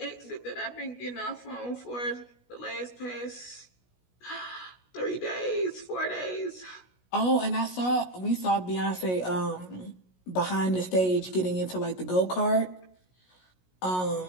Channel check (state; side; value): late; right; 16 ms